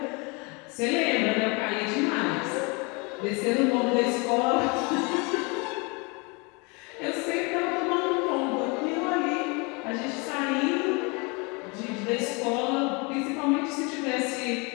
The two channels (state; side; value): quieter; right; 29.8 dB